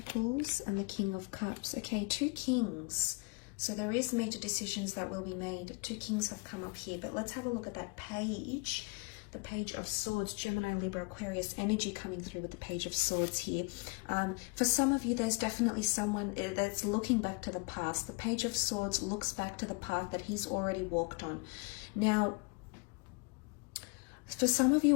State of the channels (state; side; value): quieter; right; 31.4 dB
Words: and the King of Cups. Okay, two kings. So there is major decisions that will be made. Two kings have come up here, but let's have a look at that page. The Page of Swords, Gemini, Libra, Aquarius energy coming through with the Page of Swords here. For some of you, there's definitely someone that's looking back to the past. The Page of Swords looks back to the path that he's already walked on. Now, for some of